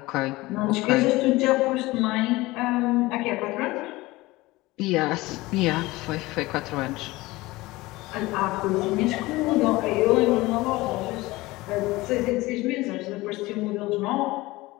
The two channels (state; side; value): quieter; right; 20.0 dB